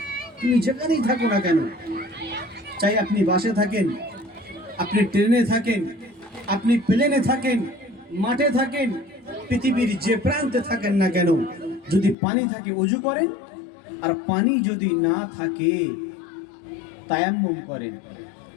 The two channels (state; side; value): drops out; right; at 12.2 s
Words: তুমি যেখানেই থাকো না কেন, চাই আপনি বাসে থাকেন, আপনি ট্রেনে থাকেন, আপনি প্লেনে থাকেন, মাঠে থাকেন, পৃথিবীর যে প্রান্তে থাকেন না কেন, যদি পানি থাকে ওযু করেন, আর পানি যদি না থাকে তায়াম্মুম করেন।